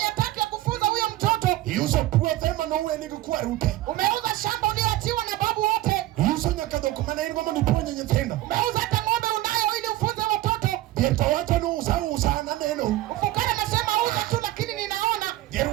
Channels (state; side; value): quieter; left; 16.0 dB